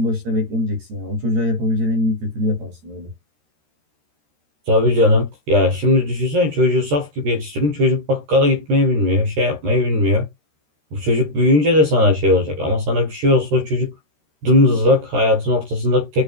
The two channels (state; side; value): late; left; 13 ms